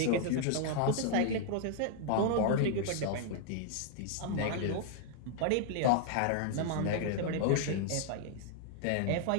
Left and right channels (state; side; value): different; both; correlation 0.00